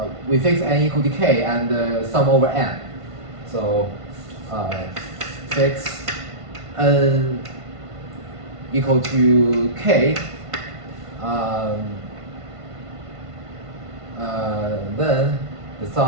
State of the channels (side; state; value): left; late; 1.5 ms